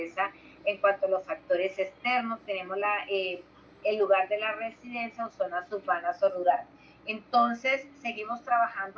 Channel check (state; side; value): identical; both; correlation 1.00